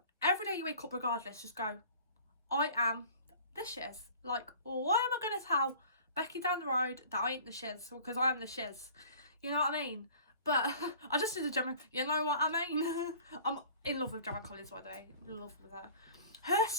Every day you wake up regardless, just go, I am the shiz. Like, why am I going to tell Becky down the road that I ain't the shiz? Because I am the shiz. You know what I mean? But I just did a Gemma, you know what I mean? I'm in love with Gemma Collins, by the way. In love with her. Her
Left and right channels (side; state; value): both; inverted; correlation -0.46